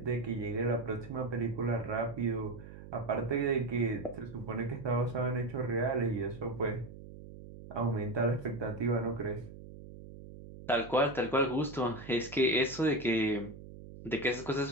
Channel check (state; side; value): noise; right; hum, 15 dB below the sound